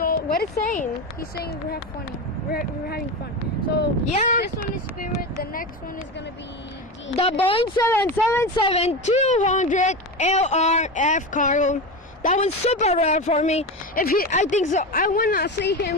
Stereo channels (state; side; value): normal; both; correlation 0.21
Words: What is saying? he's saying we're having fun. We're having fun. So Yeah. this one is Spirit. The next one is gonna be The Boeing 777-200 LRF cargo. That was super rare for me. I think so. I wanna see